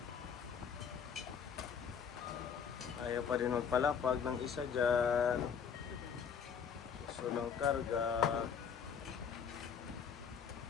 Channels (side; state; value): right; quieter; 7.1 dB